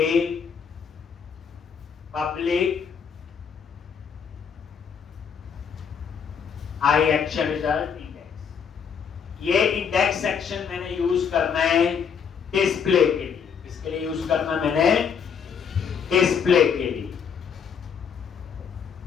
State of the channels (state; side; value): quieter; right; 6.9 dB